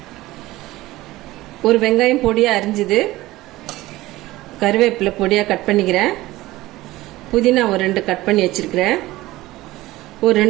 ஒரு வெங்காயம் பொடியாக அரிஞ்சுது, கருவேப்பிலை பொடியாக கட் பண்ணிக்கிறேன். புதினா ஒரு 2 கட் பண்ணி வச்சிருக்கிறேன். ஒரு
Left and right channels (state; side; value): quieter; left; 17.8 dB